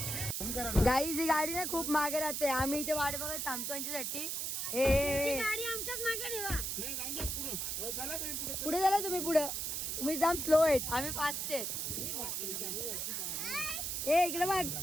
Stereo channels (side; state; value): right; noise; hiss, 2 dB below the sound